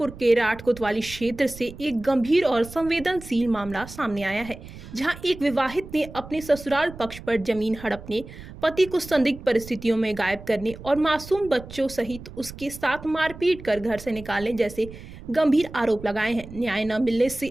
के राठ कोतवाली क्षेत्र से एक गंभीर और संवेदनशील मामला सामने आया है, जहां एक विवाहित ने अपने ससुराल पक्ष पर जमीन हड़पने, पति को संदिग्ध परिस्थितियों में गायब करने और मासूम बच्चों सहित उसके साथ मारपीट कर घर से निकालने जैसे गंभीर आरोप लगाए हैं। न्याय न मिलने से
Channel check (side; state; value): right; noise; rumble, 15 dB below the sound